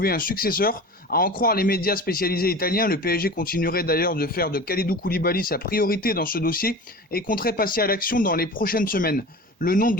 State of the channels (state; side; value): normal; both; correlation 0.34